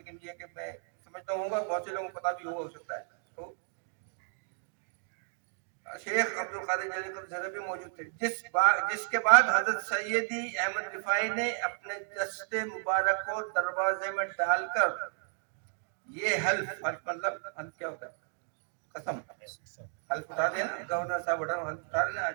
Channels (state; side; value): silent; left; 55 dB below the other